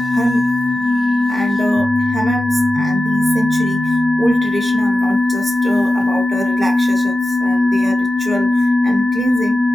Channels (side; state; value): both; normal; correlation 0.93